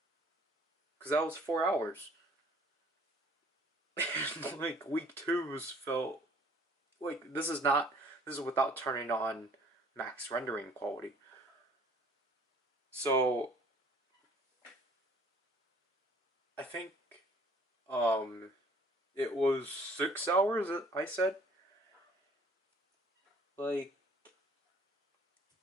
because that was 4 hours. Like week two's felt like this is without turning on max rendering quality. So I think it was 6 hours I said. Like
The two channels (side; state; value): both; normal; correlation 0.56